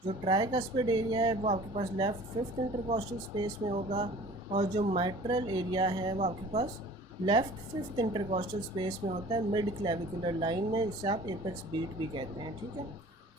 जो ट्राइकस्पिड एरिया है वो आपके पास लेफ़्ट फिफ्थ इंटरकॉस्टल स्पेस में होगा। और जो माइट्रल एरिया है वो आपके पास लेफ़्ट फिफ्थ इंटरकॉस्टल स्पेस में होता है, मिड क्लेविकुलर लाइन में, इसे आप एपेक्स बीट भी कहते हैं, ठीक है।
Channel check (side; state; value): both; normal; correlation 0.46